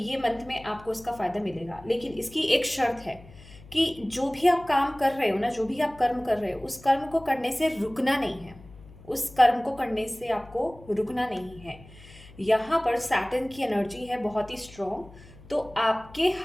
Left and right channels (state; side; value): noise; left; hum, 21 dB below the sound